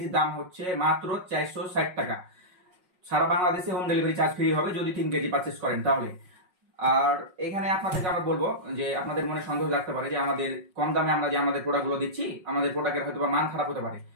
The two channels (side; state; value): left; late; 5.5 ms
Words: দাম হচ্ছে মাত্র 460 টাকা। সারা বাংলাদেশে হোম ডেলিভারি চার্জ ফ্রি হবে যদি 3 কেজি পারচেস করেন তাহলে। আর এখানে আপনাদেরকে আমরা বলবো যে আপনাদের মনে সন্দেহ লাগতে পারে যে আমাদের কম দামে আমরা যে আমাদের প্রোডাক্টগুলো দিচ্ছি আমাদের প্রোডাক্টের হয়তো মান খারাপ হতে পারে।